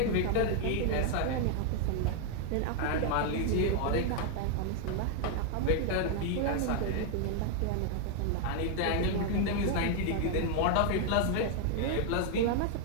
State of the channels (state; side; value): different; both; correlation 0.00